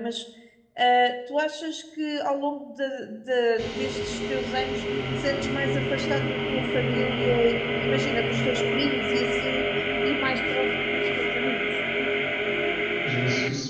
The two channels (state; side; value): identical; both; correlation 1.00